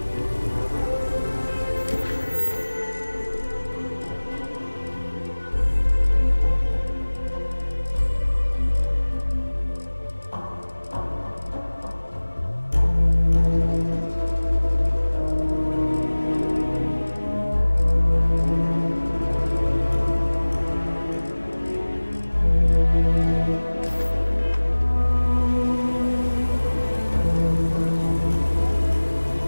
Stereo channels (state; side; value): inverted; both; correlation -1.00